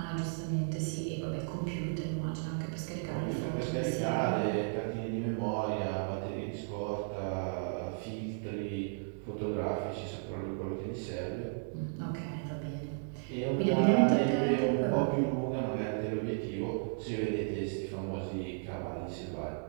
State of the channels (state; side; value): silent; left; 55 dB below the other